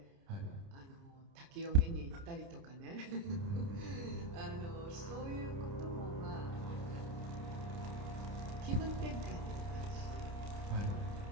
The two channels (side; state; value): left; late; 29 ms